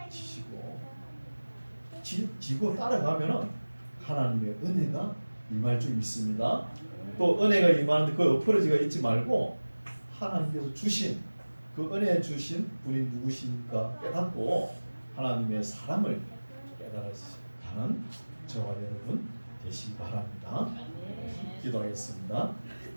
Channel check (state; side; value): inverted; both; correlation -1.00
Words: 지시고 지고 따라가면은 하나님의 은혜가 임할 줄 믿습니다. 또 은혜가 임하는데 그 엎어지가 있지 말고 하나님께서 주신 그 은혜 주신 분이 누구십니까 깨닫고 하나님의 사랑을 깨달아가는 저와 여러분 되시기 바랍니다. 기도하겠습니다.